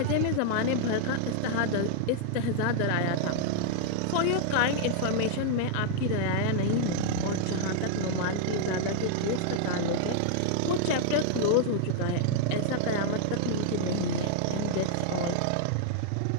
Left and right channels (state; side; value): different; both; correlation 0.00